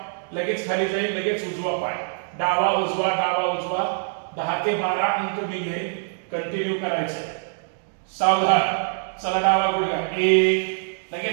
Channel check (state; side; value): silent; left; digital silence